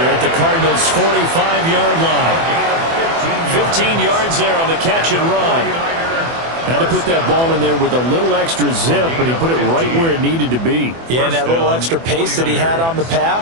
at the Cardinals' 45-yard line. 15 yards there on the catch and run. Had to put that ball in there with a little extra zip, but he put it right where it needed to be. Yeah, and that little extra pace that he had on the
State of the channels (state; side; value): late; left; 24 ms